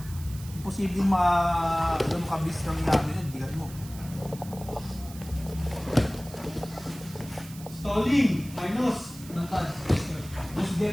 Imposibleng makabis kami namin yan. Bigat mo. Stalling! Minus! Nantad.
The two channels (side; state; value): right; noise; hiss, 17 dB below the sound